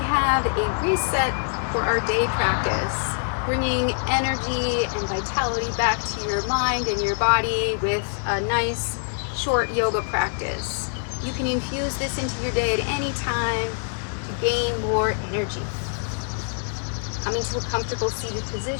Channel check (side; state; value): right; silent; 58 dB below the other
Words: have a reset for our day practice, bringing energy and vitality back to your mind and your body with a nice short yoga practice. You can infuse this into your day at any time to gain more energy. Coming to a comfortable seated